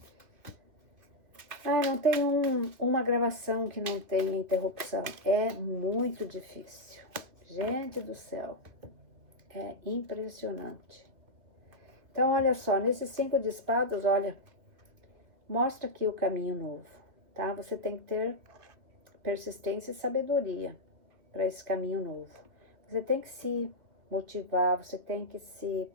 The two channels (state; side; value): late; left; 2.6 ms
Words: Não tem uma gravação que não tenha interrupção. É muito difícil. Gente do céu, é impressionante. Então, olha só, nesses 5 de espadas, olha, mostra aqui o caminho novo, tá? Você tem que ter persistência e sabedoria para esse caminho novo. Você tem que se motivar, você tem que se